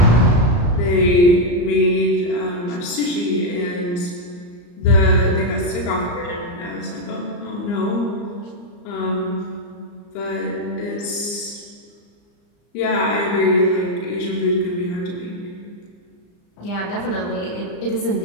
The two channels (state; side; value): late; right; 34 ms